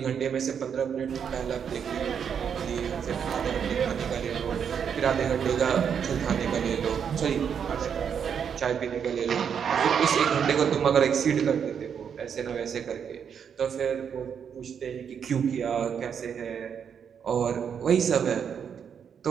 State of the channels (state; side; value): quieter; left; 7.5 dB